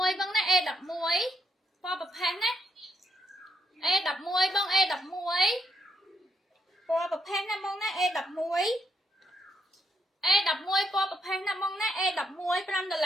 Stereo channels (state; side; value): normal; both; correlation 0.76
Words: E11 pò bập phán á E11 bông E11 pò bập phán á bông ná E11 E11 pò bập phán á bông ná E11